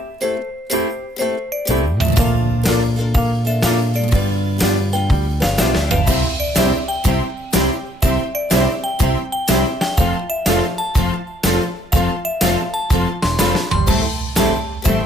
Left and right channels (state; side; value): normal; both; correlation 0.70